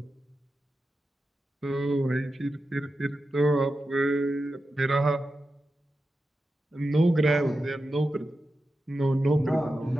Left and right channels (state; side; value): normal; both; correlation 0.91